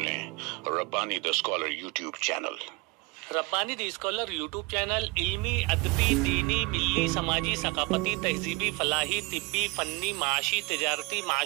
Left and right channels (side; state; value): left; quieter; 26.2 dB